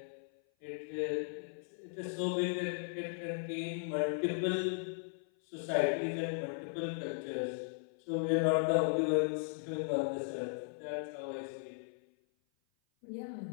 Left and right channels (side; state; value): right; silent; 53 dB below the other